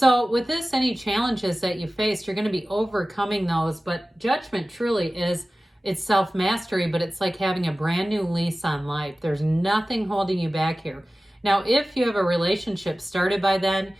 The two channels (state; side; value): normal; both; correlation 0.97